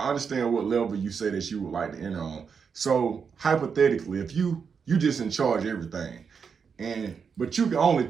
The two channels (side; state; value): left; quieter; 6.2 dB